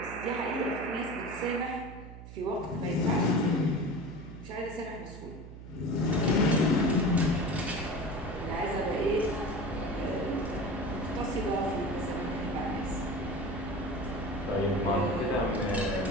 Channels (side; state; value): right; noise; hum, 14 dB below the sound